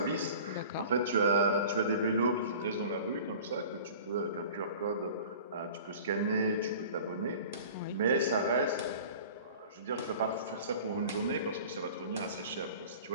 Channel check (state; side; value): inverted; both; correlation -0.43